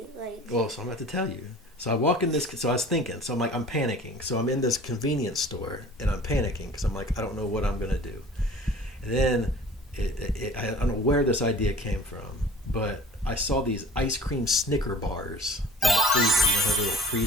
Like. Well, so I'm about to tell you. So I walk in this. So I was thinking. So I'm panicking. So I'm in this convenience store and I'm panicking because I'm like, I don't know what I'm gonna do. And then I don't know where this idea came from, but I saw these ice cream Snicker bars in the freezer. You know, have a little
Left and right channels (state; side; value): normal; both; correlation 0.46